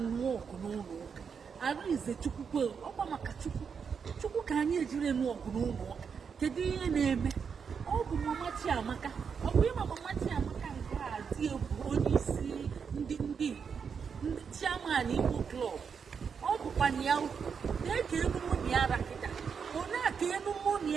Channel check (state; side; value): quieter; left; 6.4 dB